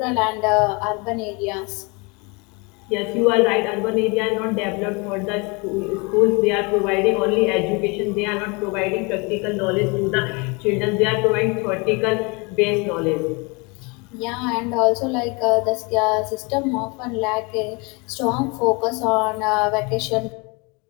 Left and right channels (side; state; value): right; quieter; 29.1 dB